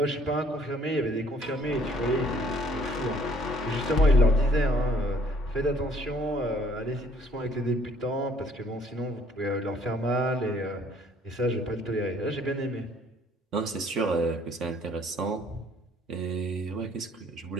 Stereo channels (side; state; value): both; normal; correlation 0.61